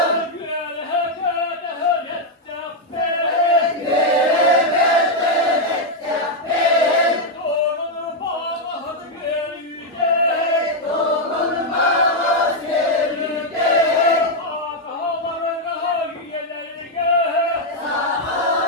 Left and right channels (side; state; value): both; normal; correlation 0.00